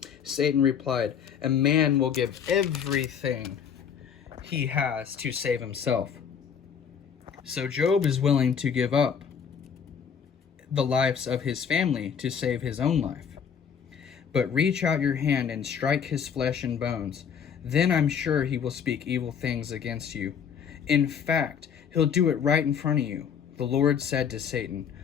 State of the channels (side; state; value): right; quieter; 7.3 dB